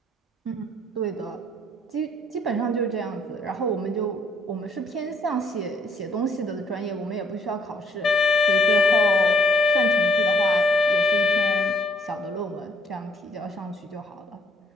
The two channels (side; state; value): both; normal; correlation 0.64